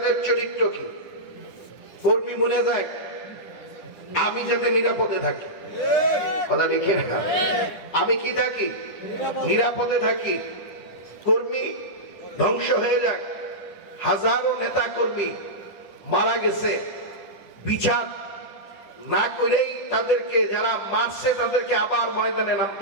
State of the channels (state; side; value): late; right; 10 ms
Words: চরিত্র কি? কর্মী মরে যায়, আমি যাতে নিরাপদে থাকি, কথা লিখে না, আমি কি থাকি? নিরাপদে থাকি। কর্মী ধ্বংস হয়ে যাক, হাজারো নেতা কর্মী মারা গেছে, বিচার না করেই তাদেরকে যারা মারছে তাদেরকে আবার ময়দানে